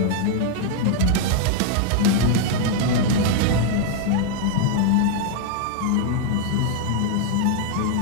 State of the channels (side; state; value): both; different; correlation 0.01